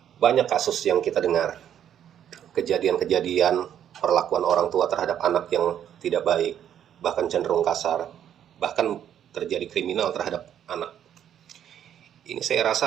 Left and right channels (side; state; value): left; quieter; 9.9 dB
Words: Banyak kasus yang kita dengar, kejadian-kejadian perlakuan orang tua terhadap anak yang tidak baik, bahkan cenderung kasar, bahkan terjadi kriminal terhadap anak. Ini saya